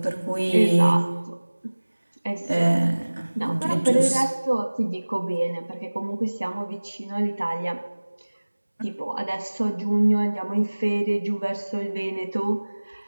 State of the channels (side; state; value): both; inverted; correlation -1.00